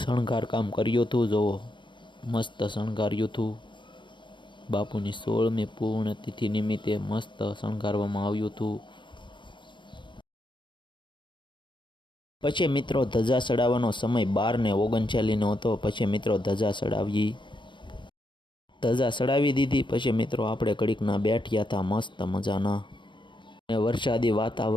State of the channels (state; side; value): late; right; 0.23 ms